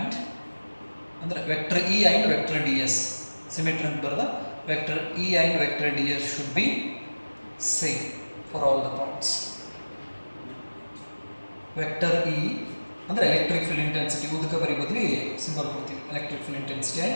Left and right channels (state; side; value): inverted; both; correlation -1.00